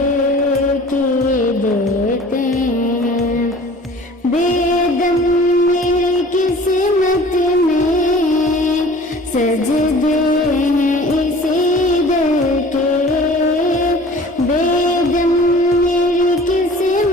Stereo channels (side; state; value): both; normal; correlation 0.46